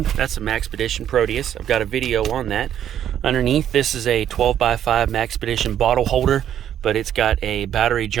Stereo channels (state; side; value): quieter; left; 10.3 dB